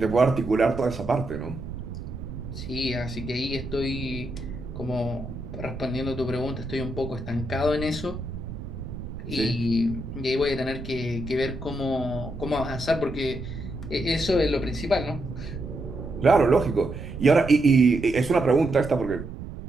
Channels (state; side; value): noise; right; rumble, 10 dB below the sound